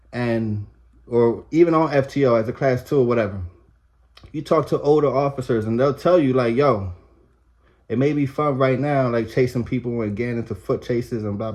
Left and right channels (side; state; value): both; identical; correlation 1.00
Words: and or even on FTO as a class 2 or whatever. You talk to older officers and they'll tell you, like, yo, it may be fun right now, like chasing people and getting into foot chases and blah